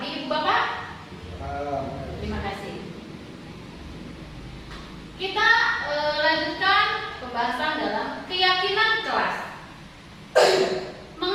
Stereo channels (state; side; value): identical; both; correlation 1.00